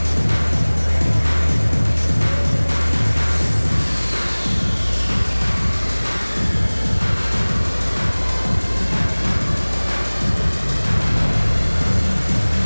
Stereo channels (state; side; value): inverted; both; correlation -1.00